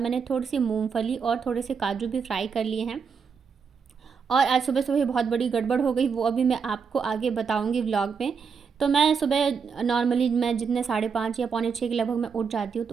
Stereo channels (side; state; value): left; quieter; 6.0 dB